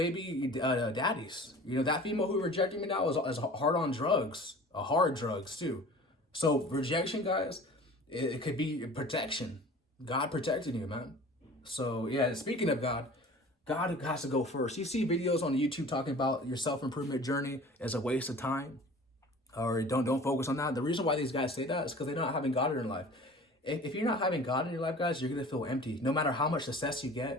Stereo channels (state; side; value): normal; both; correlation 0.43